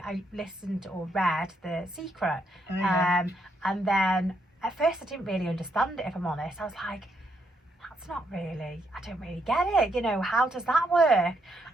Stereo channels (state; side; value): normal; both; correlation 0.76